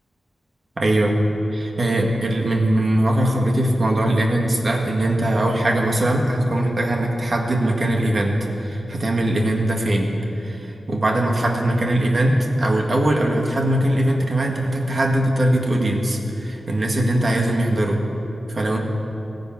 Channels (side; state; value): both; normal; correlation 0.92